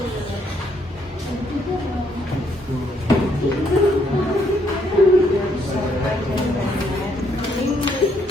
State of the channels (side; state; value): both; normal; correlation 0.71